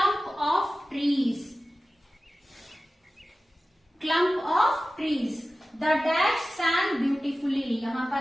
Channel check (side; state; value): both; normal; correlation 0.96